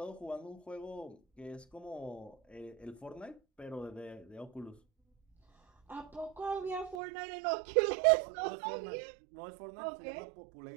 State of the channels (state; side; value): drops out; left; at 7.0 s